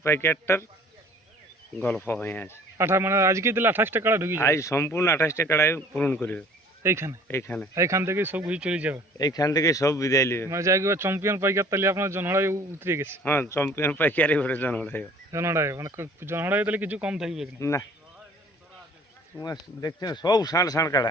প্যাকেটটার গল্প হয়ে আছে। মানে আজকে দিলে 28টা কাড়া ঢুকি আজ সম্পূর্ণ 28টা কাড়াই পূরণ করবে এইখান থেকে সব কিছু চলে যাবে। এইখান থেকে সব বিদায় নেবে। মানে যাই চ্যাম্পিয়ন পাইকার তাহলে আপনার জনহড়াই উতরে গেছে। হ্যাঁ, চ্যাম্পিয়ন পাইকারি ঘরে জনহড়াই মানে জনহড়াই তাহলে কিছু কম থাকবে না। তোমার দেখছেন সব ষাঁড় ষাঁড়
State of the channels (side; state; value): both; normal; correlation 0.51